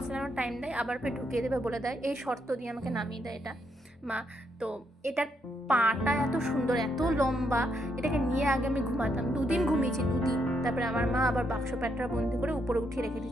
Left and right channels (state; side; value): normal; both; correlation 0.77